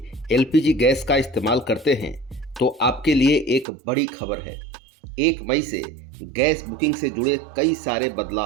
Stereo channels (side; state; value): left; drops out; at 3.7 s